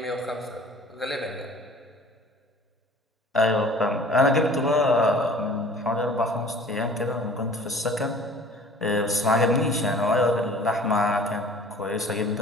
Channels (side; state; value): both; normal; correlation 0.48